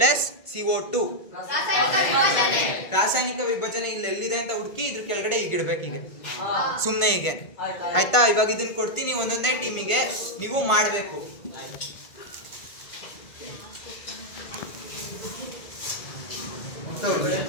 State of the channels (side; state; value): right; late; 1.5 ms